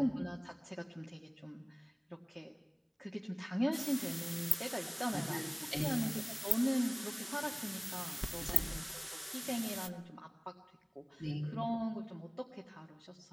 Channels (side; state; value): both; identical; correlation 1.00